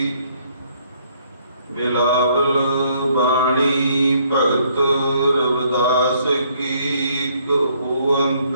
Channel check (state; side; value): inverted; both; correlation -0.66